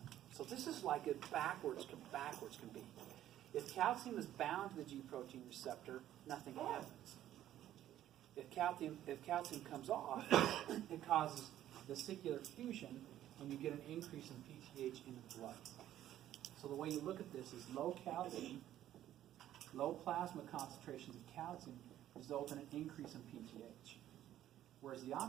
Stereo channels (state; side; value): quieter; left; 12.4 dB